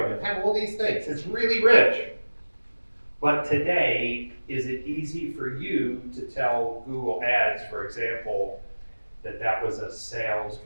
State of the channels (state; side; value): inverted; both; correlation -1.00